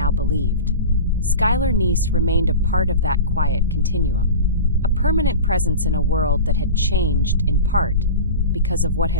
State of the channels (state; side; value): inverted; both; correlation -0.30